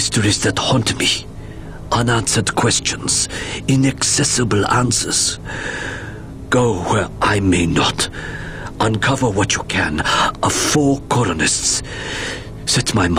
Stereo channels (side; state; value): both; identical; correlation 1.00